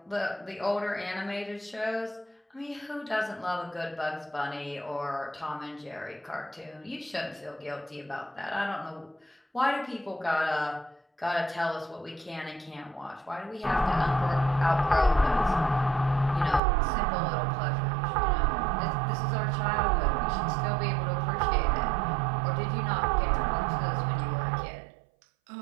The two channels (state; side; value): drops out; left; at 16.6 s